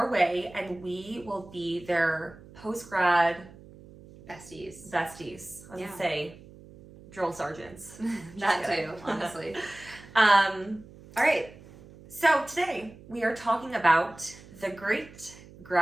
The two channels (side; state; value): right; noise; hum, 20 dB below the sound